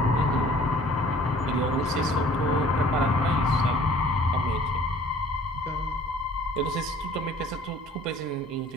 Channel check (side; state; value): both; normal; correlation 0.53